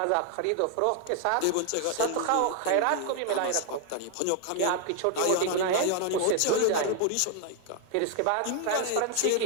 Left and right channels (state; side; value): different; both; correlation 0.00